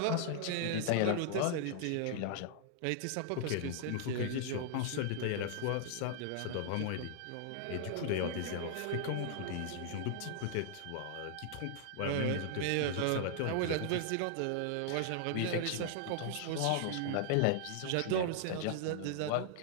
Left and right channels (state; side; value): different; both; correlation -0.01